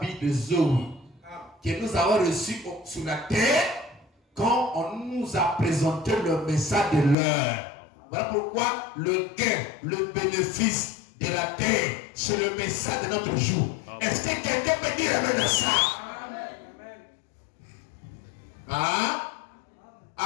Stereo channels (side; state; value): right; drops out; at 7.2 s